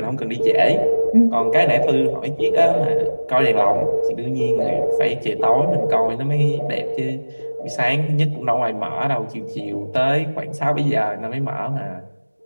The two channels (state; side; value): inverted; both; correlation -1.00